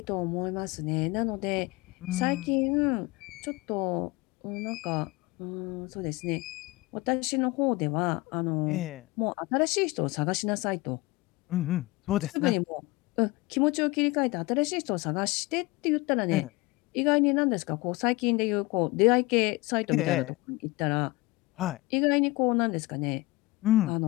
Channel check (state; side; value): quieter; right; 21.7 dB